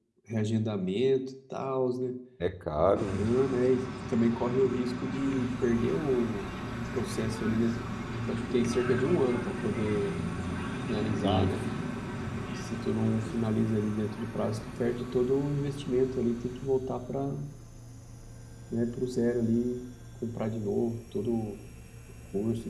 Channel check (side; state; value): both; identical; correlation 1.00